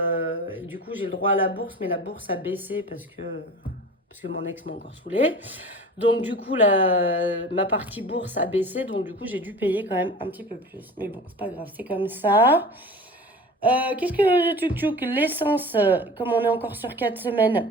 du coup, j'ai le droit à la bourse. Mais la bourse a baissé parce que mon ex m'a encore saoulée. Donc, du coup, ma partie bourse a baissé. Donc, du coup, j'ai dû payer quand même un petit peu plus. Mais bon, c'est pas grave, c'est comme ça. Qu'est-ce que tchouk l'essence, comme on est encore sur 4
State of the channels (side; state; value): both; normal; correlation 0.37